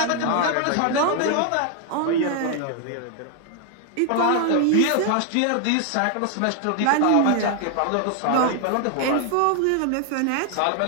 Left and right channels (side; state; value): both; different; correlation 0.00